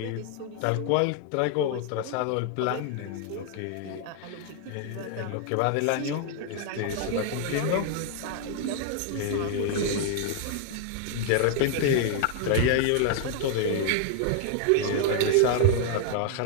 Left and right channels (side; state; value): both; different; correlation 0.00